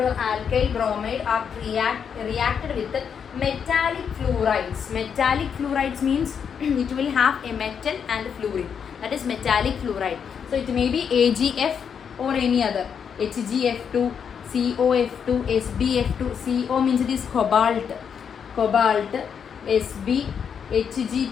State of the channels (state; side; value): quieter; right; 7.2 dB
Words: alkyl bromide are reacted with metallic fluorides. Metallic fluorides means it will have a metal and fluorine. That is metallic fluoride. So it may be AgF or any other. HgF2, COF2, SbF2. CO means it is cobalt. cobalt, Sb, Hg2.